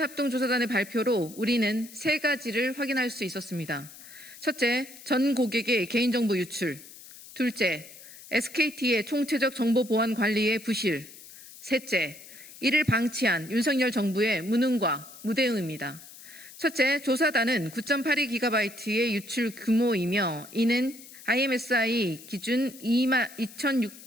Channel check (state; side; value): noise; left; hiss, 18 dB below the sound